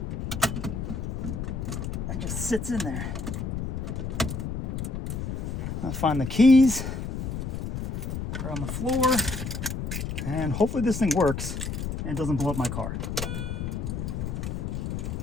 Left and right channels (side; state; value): left; noise; rumble, 4 dB below the sound